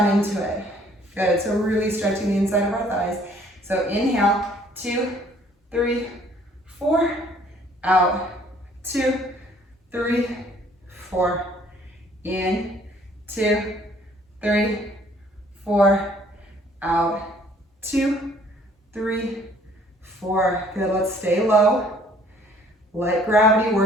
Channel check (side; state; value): both; normal; correlation 0.59